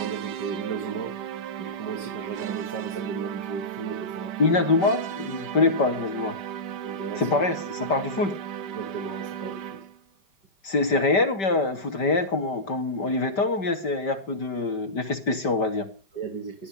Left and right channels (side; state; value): right; late; 5.1 ms